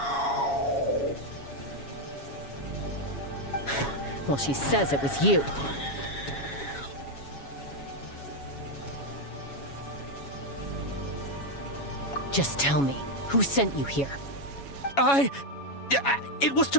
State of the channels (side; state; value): right; late; 7.2 ms